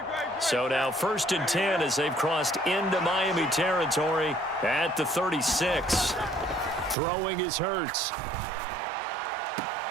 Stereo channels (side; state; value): left; drops out; at 7.0 s